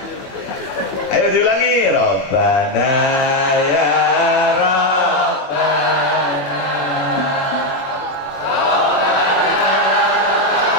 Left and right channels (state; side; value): late; right; 21 ms